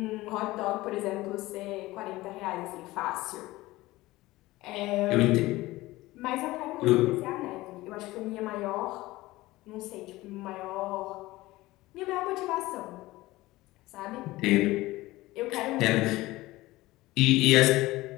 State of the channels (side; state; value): right; quieter; 18.7 dB